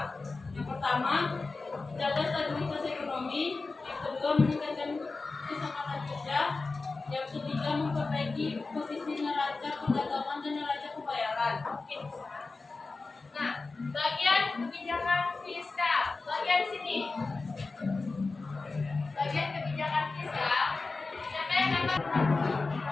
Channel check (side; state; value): right; quieter; 3.8 dB